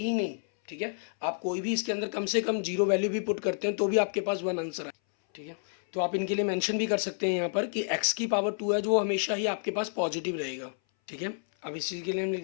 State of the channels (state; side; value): silent; right; 58 dB below the other